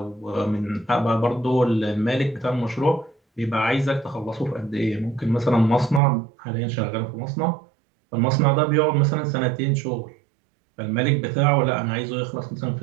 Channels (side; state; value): left; drops out; at 6.0 s